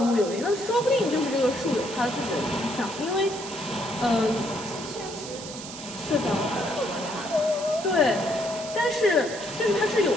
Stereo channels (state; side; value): noise; right; hiss, 11 dB below the sound